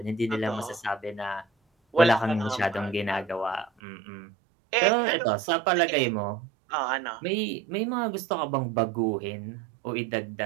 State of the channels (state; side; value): drops out; left; at 3.7 s